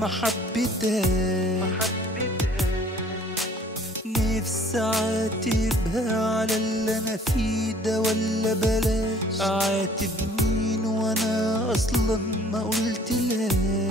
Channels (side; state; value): both; normal; correlation 0.55